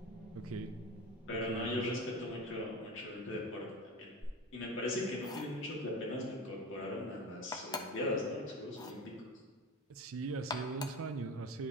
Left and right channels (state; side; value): normal; both; correlation 0.30